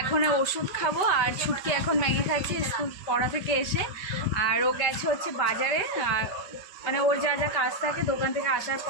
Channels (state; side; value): late; right; 5.2 ms